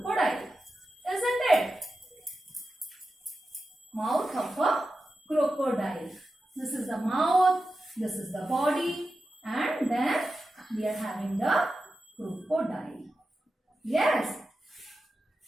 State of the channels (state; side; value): normal; both; correlation 0.91